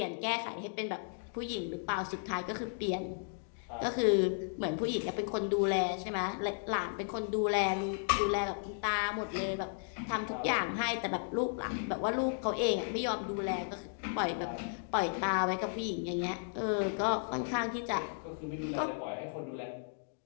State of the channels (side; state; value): right; silent; digital silence